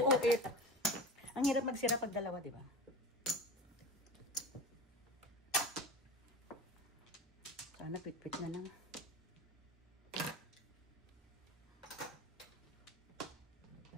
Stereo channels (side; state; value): both; normal; correlation 0.31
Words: 8. Ang hirap magsira pag dalawa, di ba? Sana pit-pit na lang.